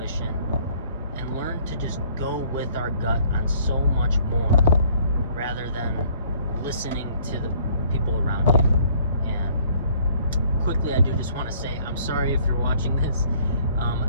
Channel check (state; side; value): inverted; both; correlation -0.59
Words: and learn to just go with our gut on so much more, rather than listening to the people around you. And quickly, I do just want to say, I'm sorry if you're watching this.